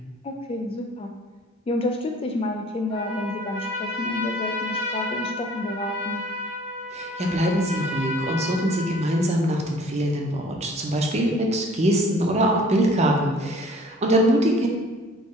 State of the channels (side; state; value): both; normal; correlation 0.52